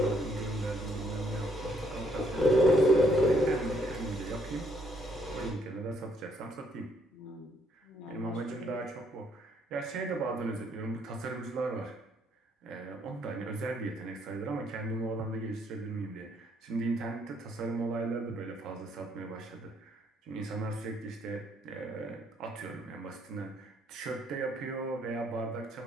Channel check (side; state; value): both; normal; correlation 0.69